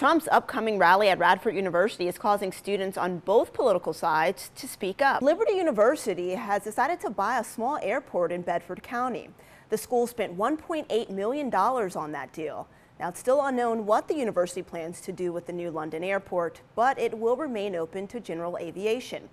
upcoming rally at Radford University is causing students on both political sides to speak up. Liberty University has decided to buy a small airport in Bedford County. The school spent $1.8 million on that deal. Now, it's still unknown what the university plans to do with the new London airport, but it will remain open to general aviation.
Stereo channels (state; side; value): identical; both; correlation 1.00